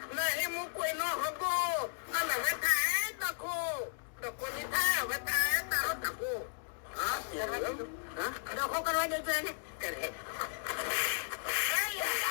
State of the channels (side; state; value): right; silent; digital silence